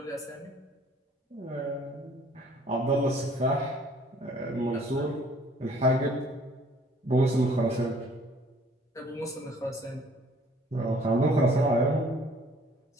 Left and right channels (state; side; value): normal; both; correlation 0.57